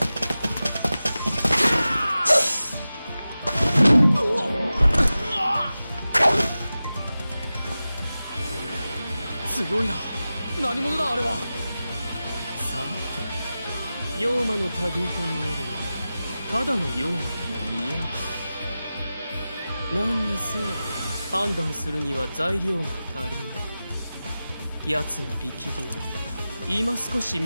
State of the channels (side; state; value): both; inverted; correlation -0.95